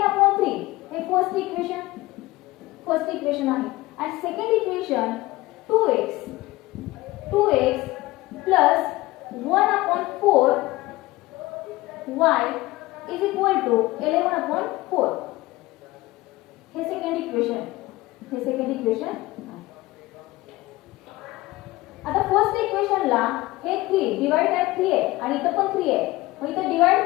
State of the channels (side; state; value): right; quieter; 19.3 dB